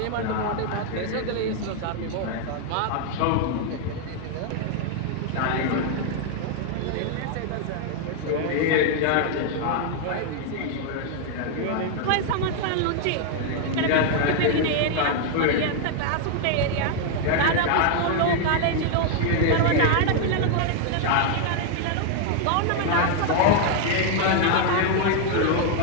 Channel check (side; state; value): both; different; correlation 0.00